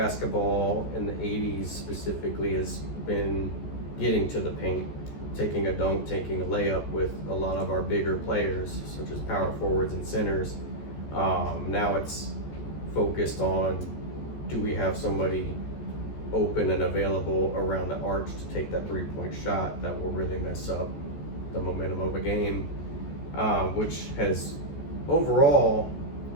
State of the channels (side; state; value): right; late; 14 ms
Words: in the 80s specifically has been getting to the paint, taking a dunk, taking a layup with a lot of our bigger players, such as power forwards and centers. Now it's focused on, do we have somebody open and available around the arch to take that three-point shot that will really mess up the momentum of a game, which has overall